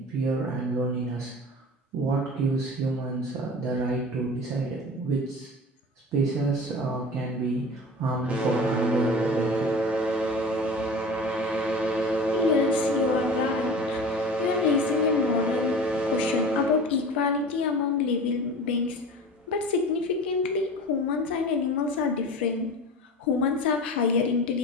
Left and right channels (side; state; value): both; normal; correlation 0.36